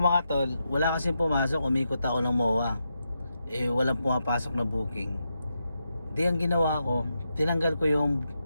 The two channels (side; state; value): both; inverted; correlation -0.85